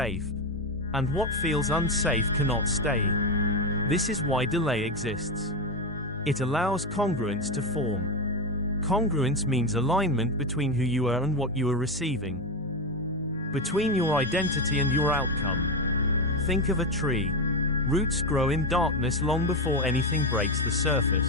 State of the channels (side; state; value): both; normal; correlation 0.12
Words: And what feels unsafe cannot stay. This is why delay exists. It allows congruence to form. Congruence means alignment between who you are and what you are receiving. Between your identity and your outcome. Think of a tree. Roots grow in darkness long before anything breaks the